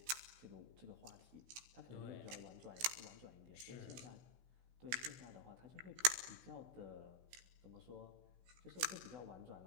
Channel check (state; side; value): late; left; 16 ms